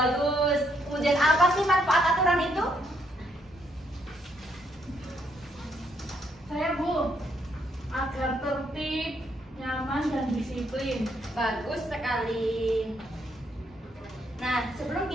Kemudian apa sih manfaat aturan itu? Saya, Bu, agar tertib, nyaman, dan disiplin. Bagus sekali. Nah, sebelum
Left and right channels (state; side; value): normal; both; correlation 0.73